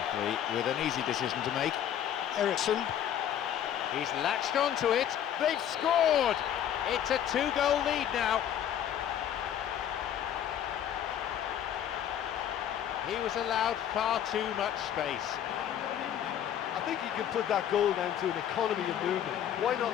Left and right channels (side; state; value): right; quieter; 10.1 dB